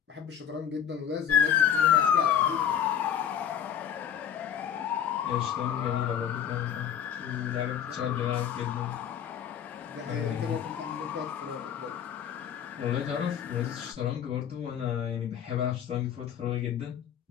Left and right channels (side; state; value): right; quieter; 9.2 dB